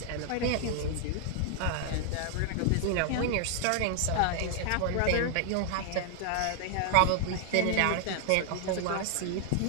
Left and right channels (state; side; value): different; both; correlation 0.00